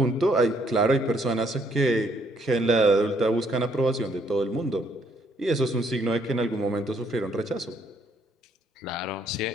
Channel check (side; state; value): both; normal; correlation 0.68